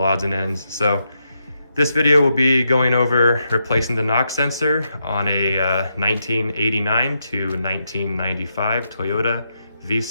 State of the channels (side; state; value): both; inverted; correlation -0.82